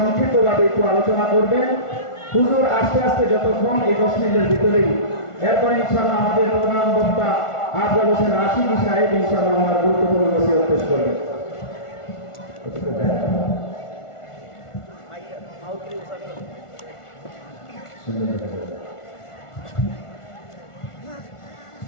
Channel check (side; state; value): right; late; 1.4 ms